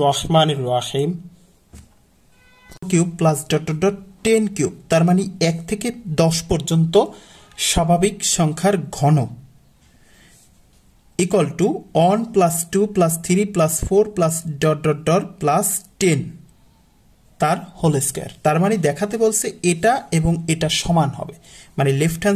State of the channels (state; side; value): identical; both; correlation 1.00